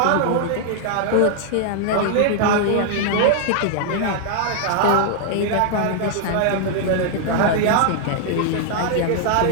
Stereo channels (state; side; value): different; both; correlation 0.00